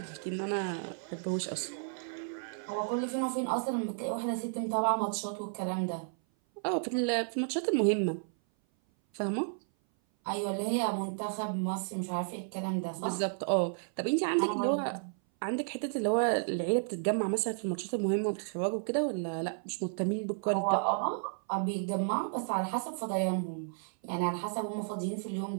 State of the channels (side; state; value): left; silent; 56 dB below the other